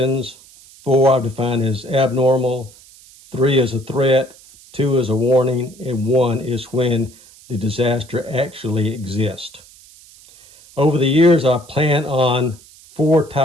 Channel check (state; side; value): noise; right; hiss, 24 dB below the sound